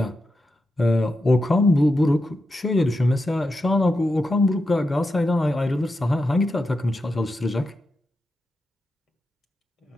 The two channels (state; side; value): normal; both; correlation 0.88